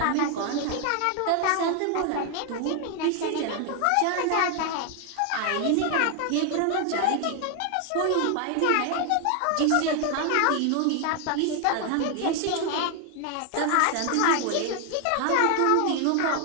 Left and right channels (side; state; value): both; different; correlation 0.00